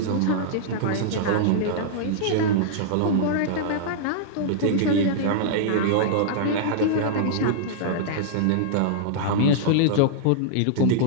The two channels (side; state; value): both; different; correlation -0.02